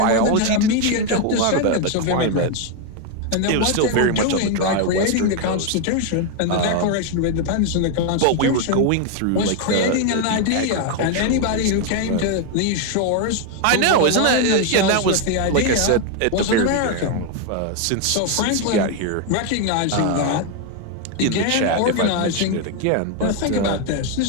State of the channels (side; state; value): both; different; correlation 0.01